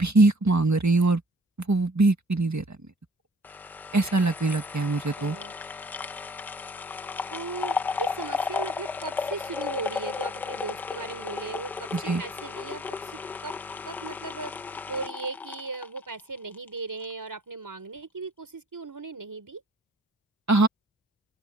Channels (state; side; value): normal; both; correlation 0.56